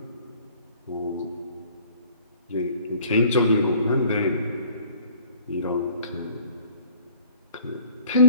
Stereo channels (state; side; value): inverted; both; correlation -0.53